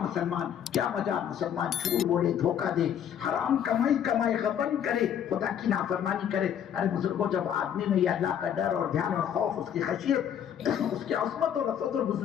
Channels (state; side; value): quieter; right; 9.3 dB